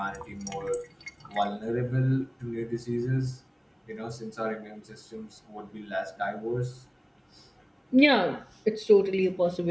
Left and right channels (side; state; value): both; identical; correlation 1.00